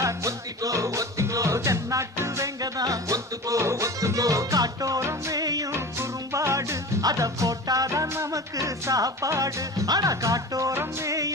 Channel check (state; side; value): normal; both; correlation 0.34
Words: ஒத்திக்கோ ஒத்திக்கோ தென்னாட்டு வெங்கதாம் ஒத்துக்கோ ஒத்துக்கோ காட்டோரம் மேயும் குறும்பாடு அத போட்டாதான் நமக்கு சாப்பாடு ஆனா காட்டோரம்